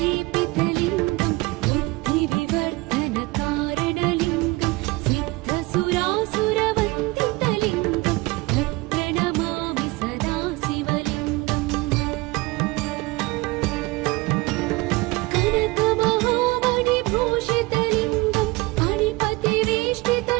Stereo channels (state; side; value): quieter; left; 23.3 dB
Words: बुद्धिविवर्धनकारणलिङ्गं सिद्धसुरासुरवन्दितलिङ्गं तत्प्रणमामि सदा शिवलिङ्गम्। कनकमहामणिभूषितलिङ्गं